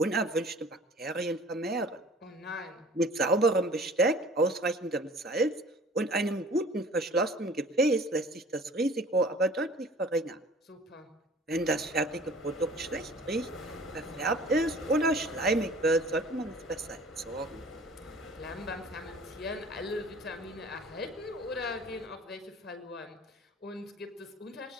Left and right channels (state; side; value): normal; both; correlation 0.48